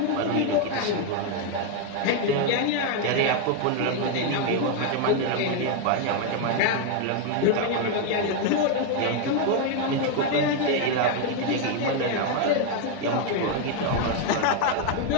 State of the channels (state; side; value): different; both; correlation 0.01